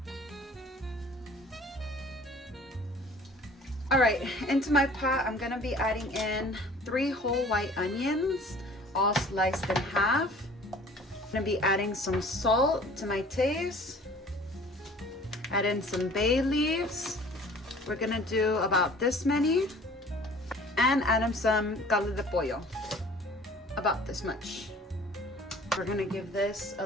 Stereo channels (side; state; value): both; normal; correlation 0.49